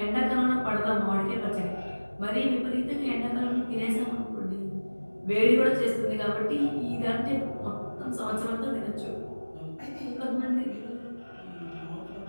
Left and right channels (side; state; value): both; inverted; correlation -1.00